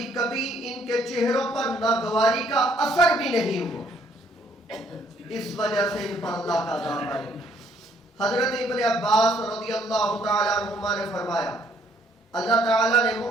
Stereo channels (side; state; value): both; normal; correlation 0.65